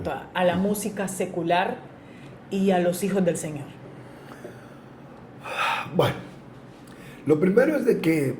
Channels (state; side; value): identical; both; correlation 1.00